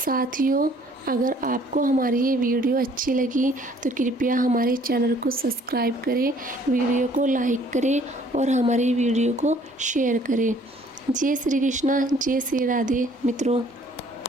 अगर आपको हमारी ये वीडियो अच्छी लगी तो कृपया हमारे चैनल को सब्सक्राइब करें, वीडियो को लाइक करें और हमारी वीडियो को शेयर करें। जय श्री कृष्णा, जय श्री राधे मित्रों।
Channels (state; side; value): normal; both; correlation 0.58